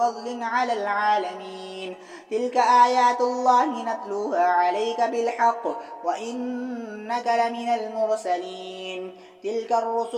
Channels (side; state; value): both; identical; correlation 1.00